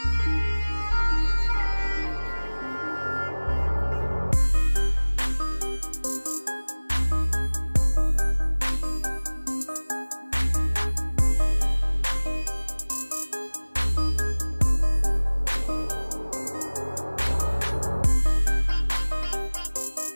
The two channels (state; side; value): inverted; both; correlation -1.00